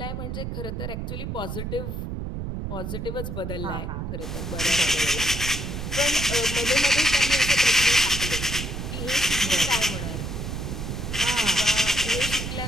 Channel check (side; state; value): right; noise; rumble, 5 dB below the sound